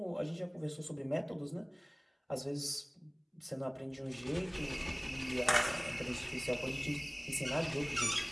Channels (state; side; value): identical; both; correlation 1.00